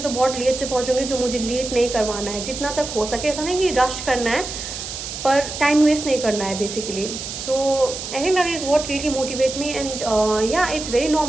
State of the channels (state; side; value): noise; right; hiss, 7 dB below the sound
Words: तो बहुत लेट से पहुँचूंगी, जो मुझे लेट नहीं करवाना है. जितना तक हो सके, ऐसा नहीं कि रश करना है, पर टाइम वेस्ट नहीं करना है basically. So I think that is what really motivates me. And yeah it's very